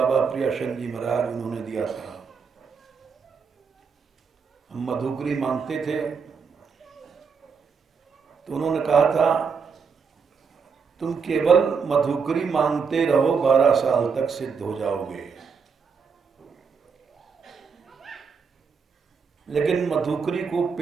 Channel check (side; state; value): left; quieter; 5.7 dB